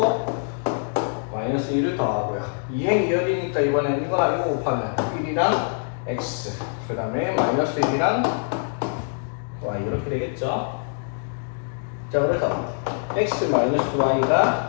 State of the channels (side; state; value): right; silent; digital silence